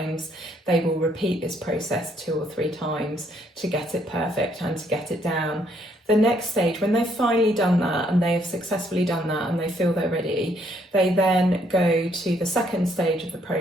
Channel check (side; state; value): both; normal; correlation 0.69